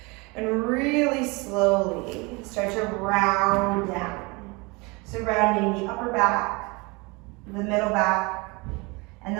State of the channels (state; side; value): quieter; left; 27.1 dB